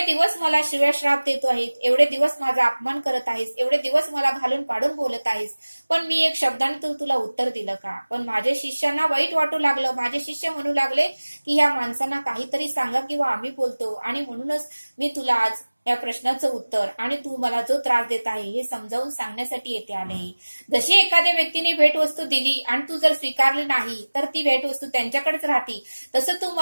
दिवस मला शिव्या श्राप देतो आहेस, एवढे दिवस माझा अपमान करत आहेस, एवढे दिवस मला घालून पाडून बोलत आहेस, पण मी एक शब्दाने तुला उत्तर दिलं का? पण माझ्या शिष्यांना वाईट वाटू लागलं. माझे शिष्य म्हणू लागले की या माणसांना काहीतरी सांगा किंवा आम्ही बोलतो, आणि म्हणूनच मी तुला आज या प्रश्नाचं उत्तर आणि तू मला जो त्रास देत आहे हे समजावून सांगण्यासाठी येथे आले. जशी एखाद्या व्यक्तीने भेटवस्तू दिली आणि तू जर स्वीकारली नाही तर ती भेटवस्तू त्यांच्याकडेच राहते, तसं तू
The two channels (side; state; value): both; inverted; correlation -1.00